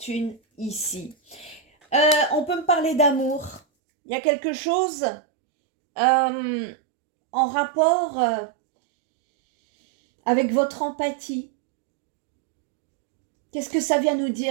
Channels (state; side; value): drops out; left; at 3.6 s